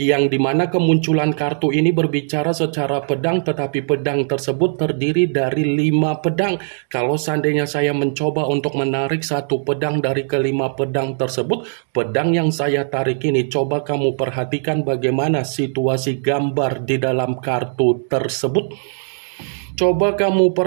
dimana kemunculan kartu ini berbicara secara pedang, tetapi pedang tersebut terdiri dari 5 pedang. Kalau seandainya saya mencoba untuk menarik satu pedang dari ke-5 pedang tersebut, pedang yang saya tarik ini, coba kamu perhatikan bagaimana situasi gambar di dalam kartu tersebut. Coba kamu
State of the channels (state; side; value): silent; left; digital silence